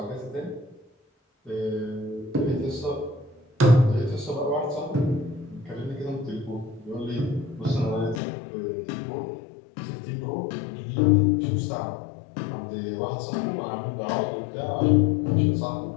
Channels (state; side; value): drops out; right; at 8.2 s